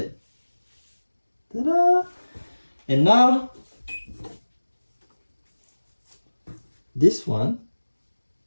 Ta-da! And now this one,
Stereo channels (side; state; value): both; inverted; correlation -1.00